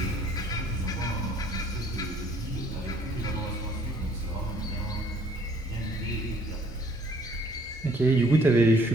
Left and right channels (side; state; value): both; normal; correlation 0.61